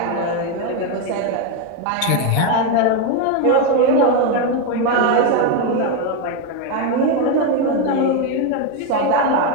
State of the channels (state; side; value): different; both; correlation 0.02